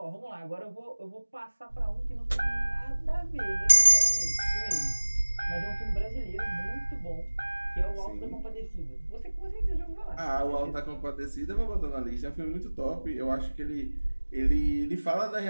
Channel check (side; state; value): both; inverted; correlation -1.00